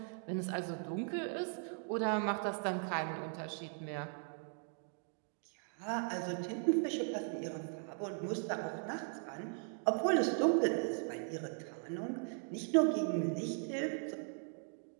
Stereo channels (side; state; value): left; silent; 52 dB below the other